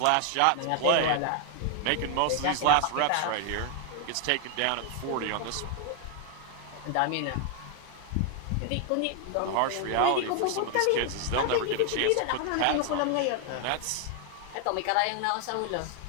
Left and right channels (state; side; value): different; both; correlation 0.00